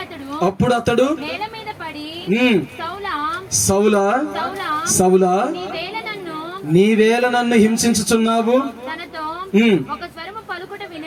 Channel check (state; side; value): identical; both; correlation 1.00